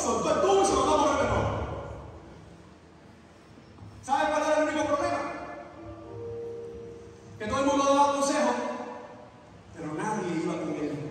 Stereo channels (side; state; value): both; identical; correlation 1.00